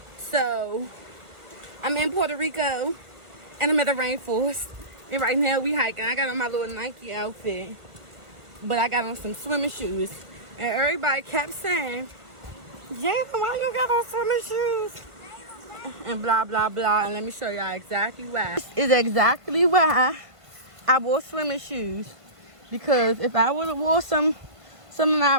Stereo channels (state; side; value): late; left; 1.5 ms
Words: So, I'm in Puerto Rico, and I'm at the rainforest. And right now we hiking. I got on my little Nike outfit, but I got on some swimming shoes. And everybody kept saying, Jada, why you got on swimming shoes? And blah, blah, blah. And let me show y'all exactly why. This is exactly why I wore swimming shoes. Because if I would have wore some of